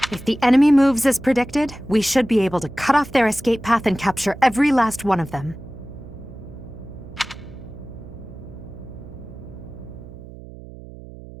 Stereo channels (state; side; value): noise; right; hum, 16 dB below the sound